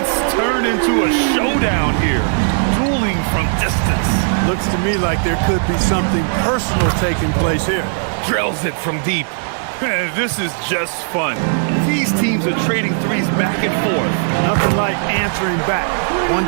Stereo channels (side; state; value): left; silent; 66 dB below the other